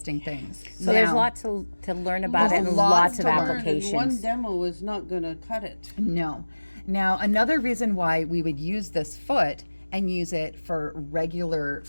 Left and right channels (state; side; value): inverted; both; correlation -1.00